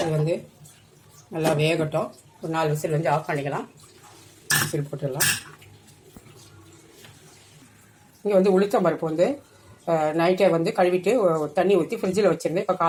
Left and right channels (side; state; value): both; identical; correlation 1.00